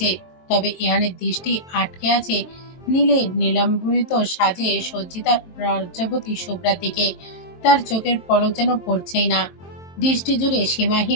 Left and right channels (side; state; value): right; late; 22 ms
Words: তবে ইহানের দৃষ্টি আটকে আছে নীলে নীলাম্বরিত সাজে সজ্জিতা লজ্জাবতী শুভ্রার দিকে। তার চোখের পলক যেন পড়ছেই না, দৃষ্টি জুড়ে